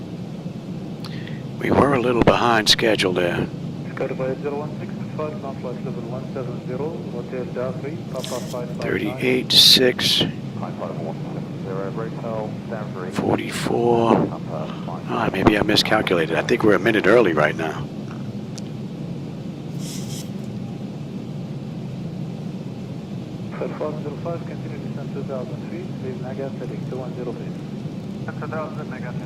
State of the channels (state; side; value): identical; both; correlation 1.00